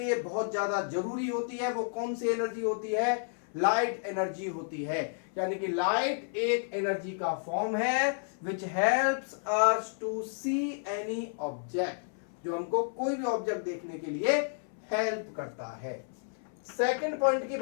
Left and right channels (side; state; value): right; silent; 57 dB below the other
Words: बहुत ज्यादा जरूरी होती है, वो कौन सी एनर्जी होती है? लाइट एनर्जी होती है। यानी कि लाइट एक एनर्जी का फॉर्म है which helps us to see any object, जो हमको कोई भी ऑब्जेक्ट देखने के लिए हेल्प करता है। सेकंड पॉइंट की